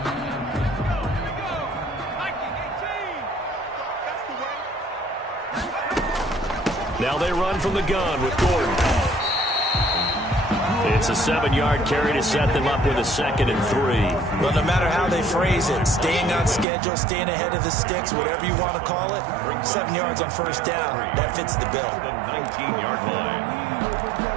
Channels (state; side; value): drops out; left; at 16.7 s